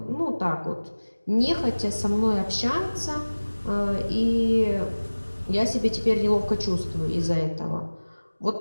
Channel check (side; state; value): both; inverted; correlation -1.00